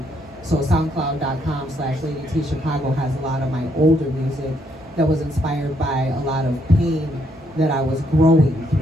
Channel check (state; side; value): normal; both; correlation 0.73